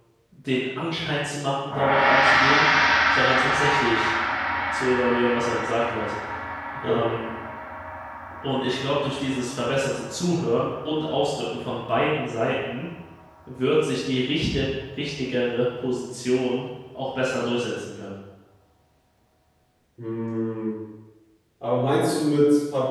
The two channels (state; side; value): identical; both; correlation 1.00